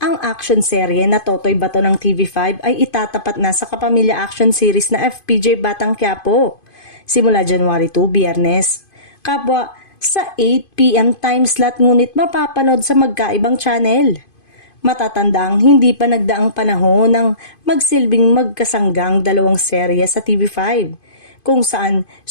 action serye na Totoy Bato ng TV5 ay itatapat na sa kapamilya action series na FPJ Batang Quiapo simula January 2, Biyernes. Kapwa sa 8 PM time slot ngunit mapapanood sa magkaibang channel. Matatandang hindi pa nagdaang panahon ng magsilbing magkasanggang dalawang serye sa TV5 kung saan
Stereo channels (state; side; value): late; right; 2.5 ms